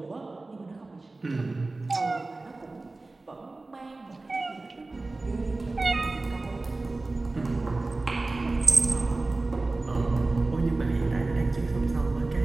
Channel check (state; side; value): quieter; left; 3.2 dB